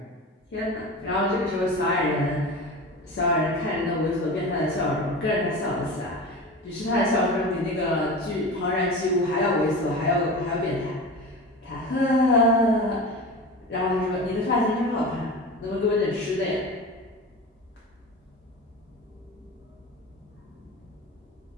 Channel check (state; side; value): normal; both; correlation 0.30